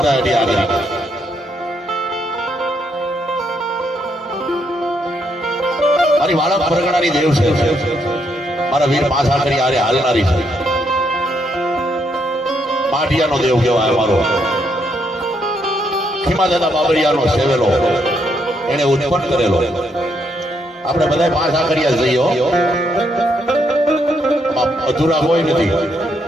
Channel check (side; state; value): both; normal; correlation 0.76